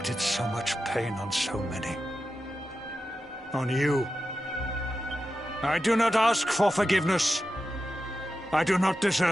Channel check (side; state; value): both; normal; correlation 0.91